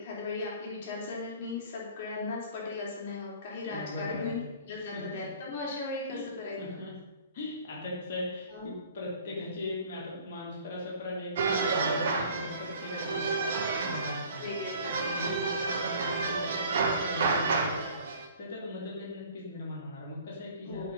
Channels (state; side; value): inverted; both; correlation -0.50